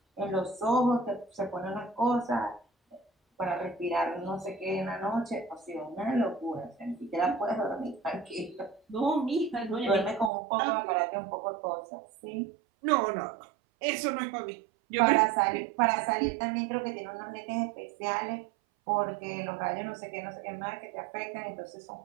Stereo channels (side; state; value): left; drops out; at 10.3 s